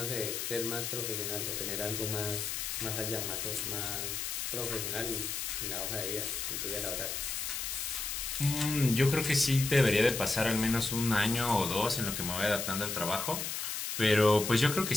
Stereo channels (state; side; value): noise; left; hiss, 3 dB below the sound